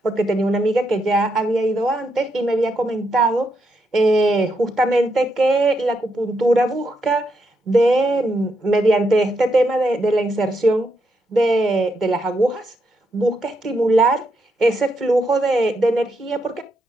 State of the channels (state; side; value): normal; both; correlation 0.80